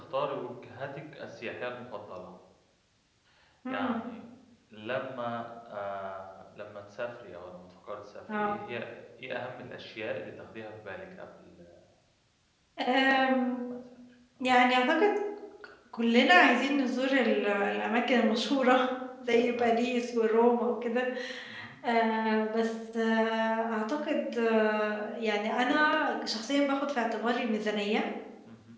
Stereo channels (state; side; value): identical; both; correlation 1.00